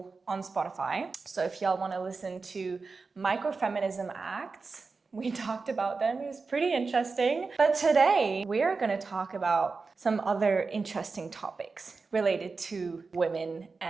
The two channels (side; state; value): left; quieter; 4.3 dB